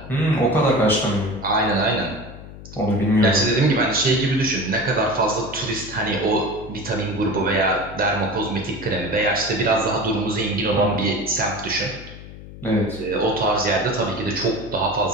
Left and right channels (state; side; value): noise; left; hum, 15 dB below the sound